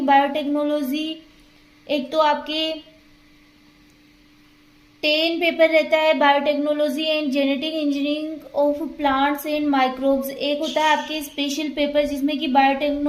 बायोटेक्नोलॉजी एक तो आपके 10 पेपर रहता है, biotechnology and genetic engineering of plants and microbes. एक होता है आपके स्पेशल पेपर जिसमें कि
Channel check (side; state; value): both; identical; correlation 1.00